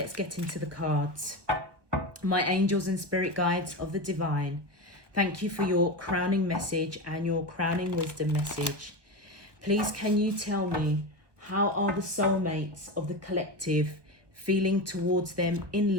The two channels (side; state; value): left; late; 1.2 ms